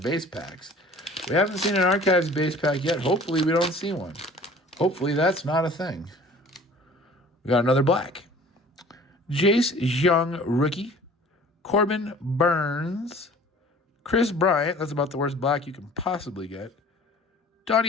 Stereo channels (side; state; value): both; normal; correlation 0.47